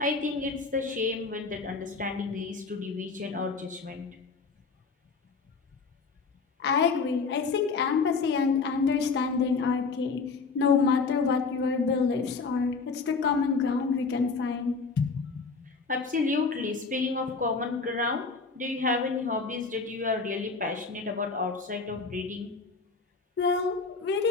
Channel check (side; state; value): right; quieter; 4.6 dB